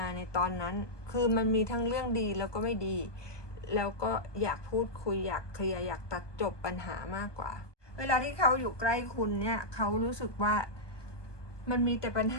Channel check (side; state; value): right; late; 1.2 ms